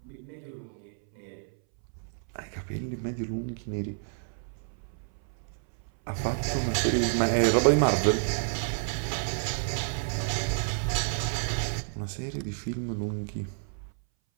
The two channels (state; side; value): silent; left; 58 dB below the other